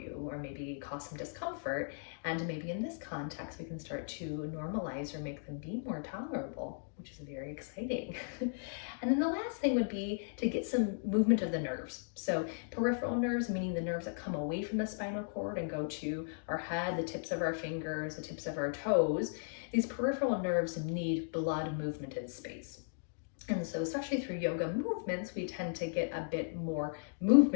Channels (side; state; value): right; silent; digital silence